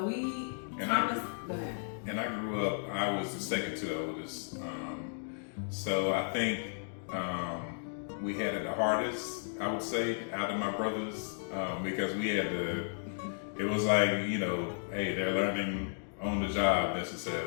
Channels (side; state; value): right; silent; digital silence